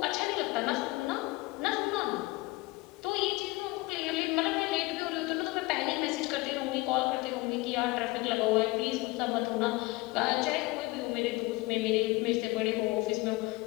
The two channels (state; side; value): quieter; right; 21.9 dB